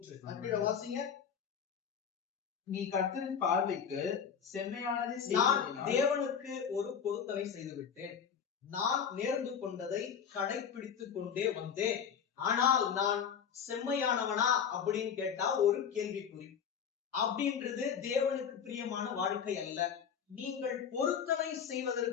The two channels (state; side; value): quieter; right; 7.5 dB